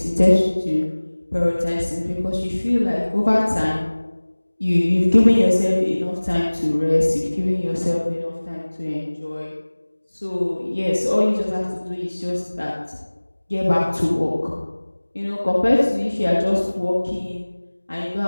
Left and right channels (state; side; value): inverted; both; correlation -1.00